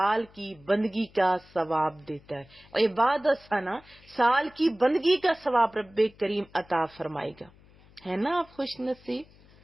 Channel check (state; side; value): noise; left; hum, 26 dB below the sound